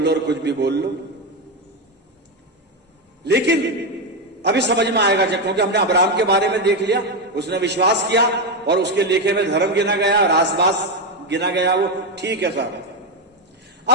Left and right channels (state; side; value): normal; both; correlation 0.09